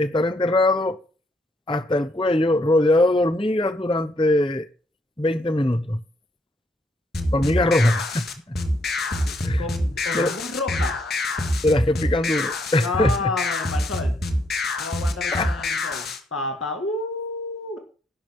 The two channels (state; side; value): normal; both; correlation 0.73